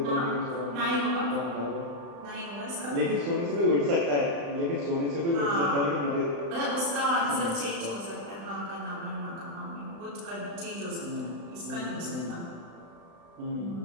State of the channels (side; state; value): left; late; 35 ms